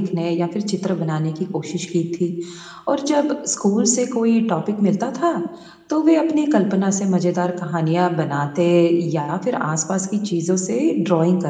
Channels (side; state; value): both; identical; correlation 1.00